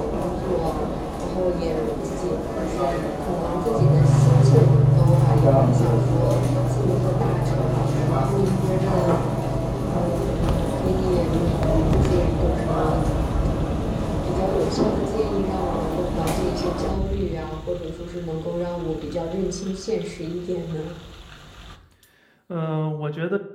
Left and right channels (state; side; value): identical; both; correlation 1.00